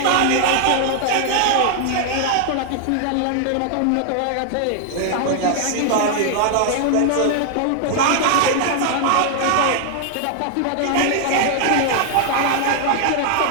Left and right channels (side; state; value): both; different; correlation 0.00